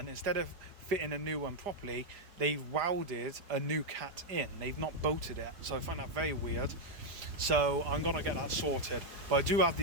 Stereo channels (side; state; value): left; late; 4.9 ms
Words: instead of fitting a new one properly, they've welded a new cat in. They've not bolted it. So I find that very weird. So I'm gonna get that sorted. But I do have